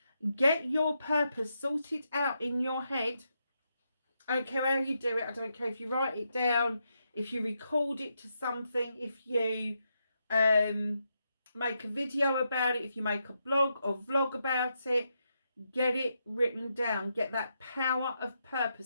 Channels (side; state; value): both; inverted; correlation -0.82